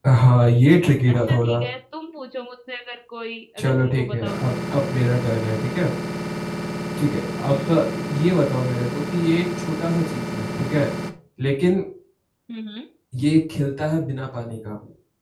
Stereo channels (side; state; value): both; identical; correlation 1.00